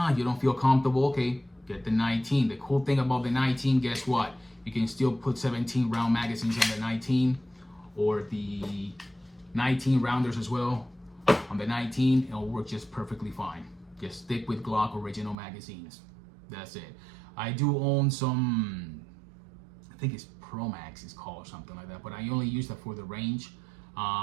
you don't feel comfortable, okay, get the 19. The cool thing about the 19, guess what? You can still put 17 round magazines on the 19 or the 19 rounders as well on the 19. It'll work just perfectly fine. Just stick with Glock original magazines. That's it. I do own some, I think it's Pro Max is called or something like that, but I only use that for the range.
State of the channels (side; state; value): left; drops out; at 15.4 s